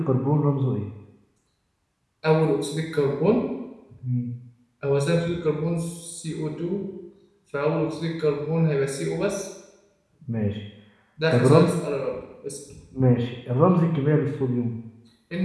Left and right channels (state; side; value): identical; both; correlation 1.00